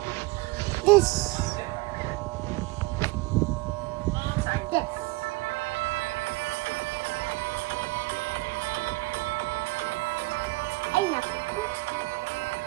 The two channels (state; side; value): quieter; left; 22.8 dB